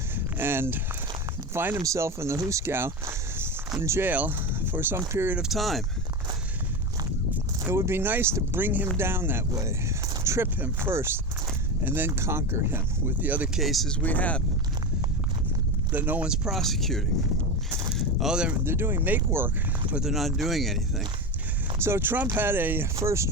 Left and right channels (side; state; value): both; normal; correlation 0.20